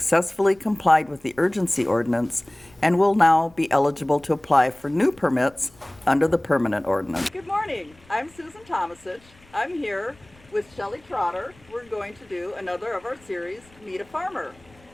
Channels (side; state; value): left; noise; rumble, 28 dB below the sound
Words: complied with the urgency ordinance and will now be eligible to apply for new permits under the permanent ordinance. Good morning. I'm Susan Tomasich. I'm here with Shelley Trotter. We're going to do another of our series, Meet a Farmer.